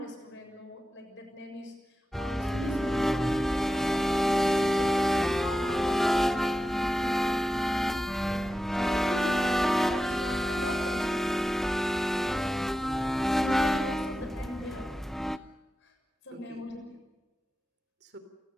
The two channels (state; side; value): normal; both; correlation 0.94